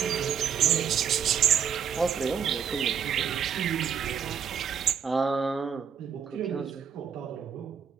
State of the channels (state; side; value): quieter; left; 7.7 dB